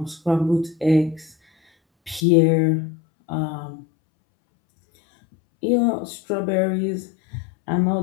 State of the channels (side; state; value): right; drops out; at 2.2 s